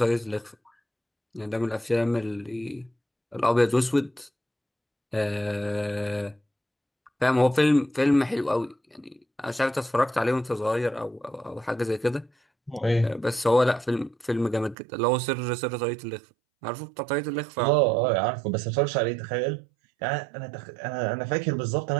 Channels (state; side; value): drops out; left; at 14.8 s